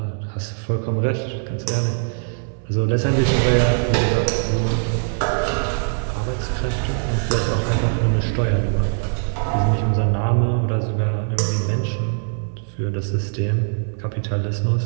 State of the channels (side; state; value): left; silent; 65 dB below the other